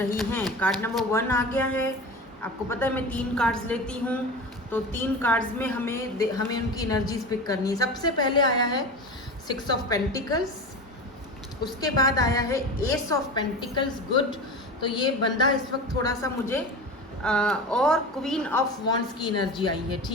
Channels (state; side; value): normal; both; correlation 0.29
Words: हैं। कार्ड नंबर 1 आ गया है। आपको पता है मैं 3 कार्ड्स लेती हूँ, तो 3 कार्ड्स में हमें उनकी एनर्जीज पिक करनी है। सबसे पहले आया है 6 ऑफ पेंटिकल्स, उसके बाद आया है एस ऑफ पेंटिकल्स, गुड। तो ये बंदा इस वक्त थोड़ा सा मुझे और क्वीन ऑफ वॉन्ड्स की एनर्जी आई है,